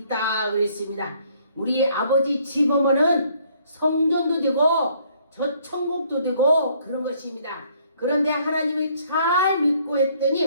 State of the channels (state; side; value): inverted; both; correlation -0.64